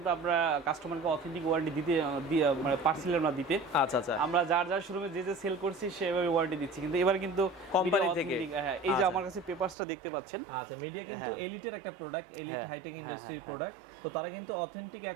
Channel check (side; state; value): left; drops out; at 9.8 s